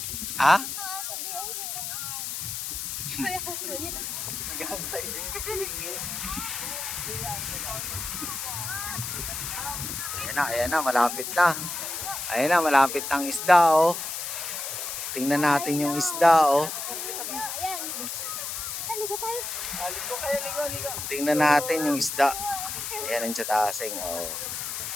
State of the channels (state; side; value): noise; left; hiss, 4 dB below the sound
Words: Ah? Ayan na, malapit na. Ayan na, malapit ang isda, oh. Tingnan natin yung isda, oh. Tingnan natin yung isda. Ayan ang Tiyatasing, oh.